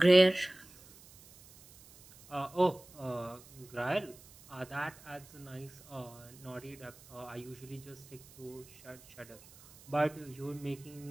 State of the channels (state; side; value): noise; right; hiss, 22 dB below the sound